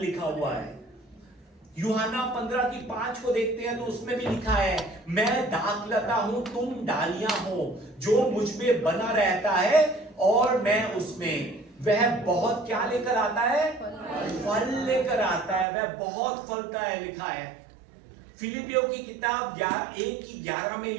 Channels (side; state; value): left; drops out; at 15.7 s